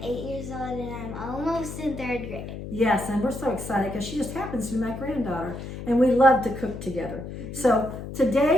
8 years old and I'm almost in 3rd grade. Yes, and we're so excited because she just happens to be my granddaughter and we love to cook together. So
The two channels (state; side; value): noise; left; hum, 9 dB below the sound